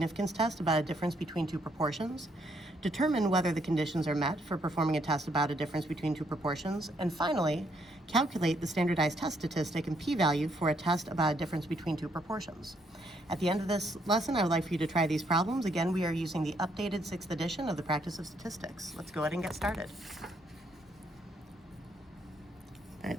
test about a difference between two proportions, determine whether the conditions are met for performing a test about a difference between two proportions, and finally, calculate the standardized test statistic and p-value for a test about a difference between two proportions. At the end of this lesson, I would like for you to try these problems. Again, we are using the updated 6th edition of the Practice of Statistics. Let's go ahead and get started. All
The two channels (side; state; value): both; normal; correlation 0.72